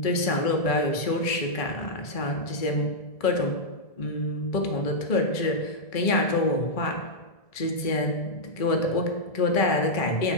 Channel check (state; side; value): late; right; 1.7 ms